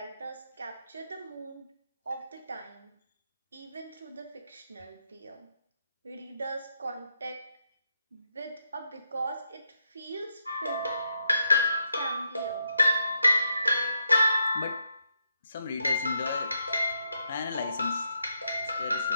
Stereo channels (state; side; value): inverted; both; correlation -0.81